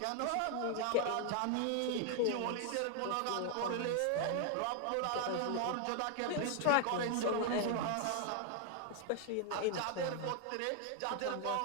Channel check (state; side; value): different; both; correlation 0.00